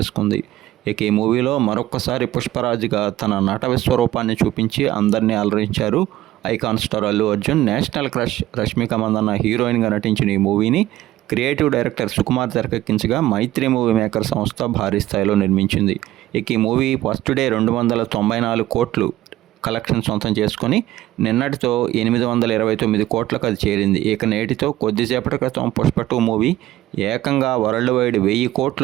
ఇక ఈ మూవీలో మరొక్కసారి పుష్పరాజుగా తన నట విశ్వరూపాన్ని చూపించి అందరినీ అలరించారు icon star Allu Arjun. National crush Rashmika Mandanna హీరోయిన్గా నటించిన ఈ మూవీని క్రియేటివ్ డైరెక్టర్ సుకుమార్ తెరకెక్కించగా మైత్రి మూవీ మేకర్ సంస్థ భారీ స్థాయిలో నిర్మించింది. ఇక ఈ మూవీ ఫస్ట్ డే 294 కోట్లు కలెక్షన్ సొంతం చేసుకొని నిన్నటితో 829 కోట్లకు అది చేరింది. ఇక నేటితో కొద్దిసేపటి క్రితం పుష్ప 2 మూవీ ఏకంగా వరల్డ్ వైడ్ 1000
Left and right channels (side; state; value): left; quieter; 14.9 dB